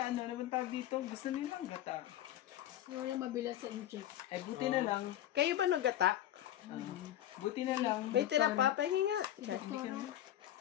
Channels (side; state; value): right; quieter; 12.5 dB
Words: naman tawag dito, gusto niyo mang gata. Wala mabilang sa incheck. Ay, buti na lang. Kayo ba nagata? Buti na lang. May tira pa. Pahingi nga. Char. Doktora.